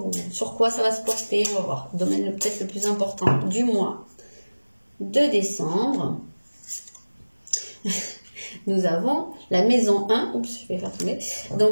sur quoi ça va se porter. On va voir, le domaine peut-être le plus important du mois de décembre. nous avons la maison 1. Oups, je vais faire tomber. Donc,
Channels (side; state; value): both; inverted; correlation -1.00